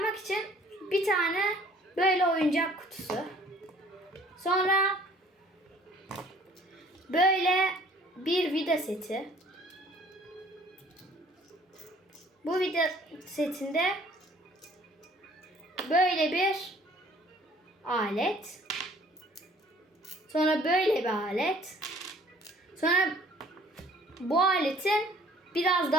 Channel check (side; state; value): both; normal; correlation 0.55